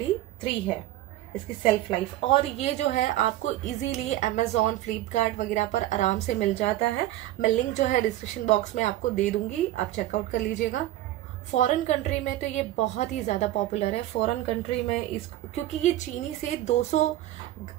है इसकी सेल्फ लाइफ। और ये जो है आपको इजीली अमेजोन, फ्लिपकार्ट वगैरह पर आराम से मिल जाता है। मैं लिंक जो है डिस्क्रिप्शन बॉक्स में आपको दे दूंगी, आप चेकआउट कर लीजिएगा। फॉरेन कंट्री में तो ये बहुत ही ज्यादा पॉपुलर है। फॉरेन कंट्री में क्योंकि ये चीनी से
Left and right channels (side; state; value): left; quieter; 14.7 dB